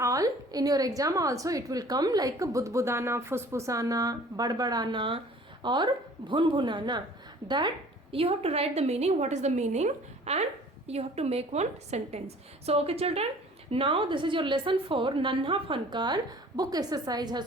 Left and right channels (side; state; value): both; normal; correlation 0.49